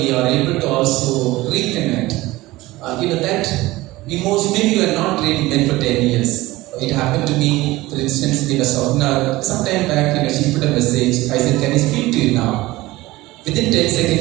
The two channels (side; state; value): left; quieter; 18.9 dB